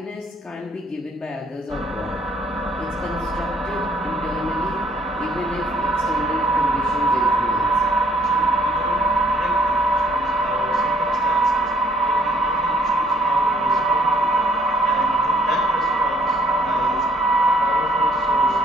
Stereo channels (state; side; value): normal; both; correlation 0.63